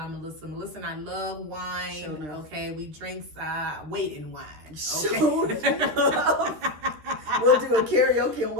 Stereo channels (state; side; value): late; left; 13 ms